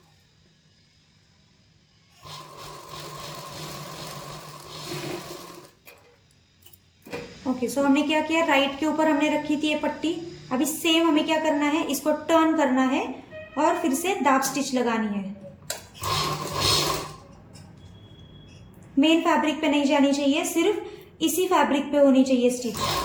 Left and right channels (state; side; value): identical; both; correlation 1.00